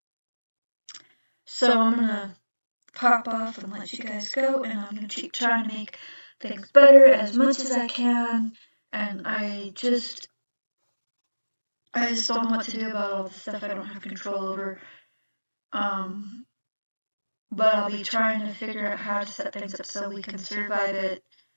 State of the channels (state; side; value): inverted; both; correlation -1.00